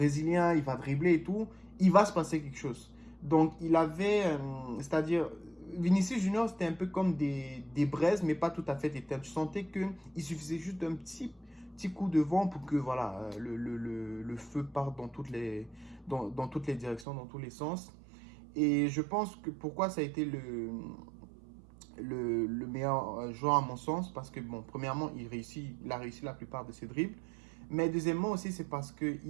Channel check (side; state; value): left; drops out; at 17.1 s